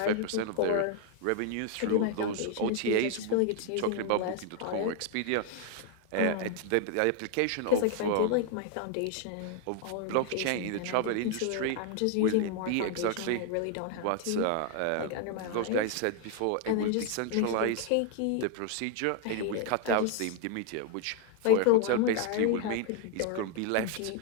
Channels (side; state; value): both; different; correlation 0.01